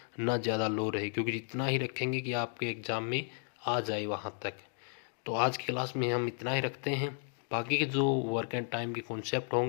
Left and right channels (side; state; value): right; silent; 55 dB below the other